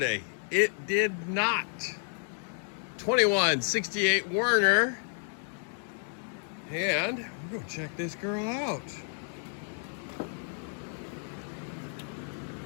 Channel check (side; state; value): right; silent; 57 dB below the other